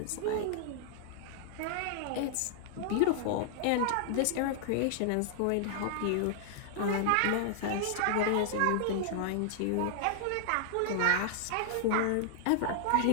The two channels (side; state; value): both; different; correlation -0.01